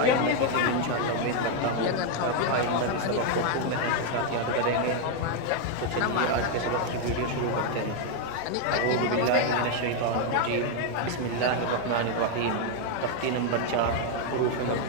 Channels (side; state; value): both; different; correlation 0.01